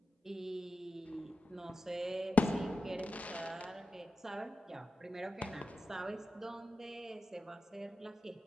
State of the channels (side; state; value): both; normal; correlation 0.92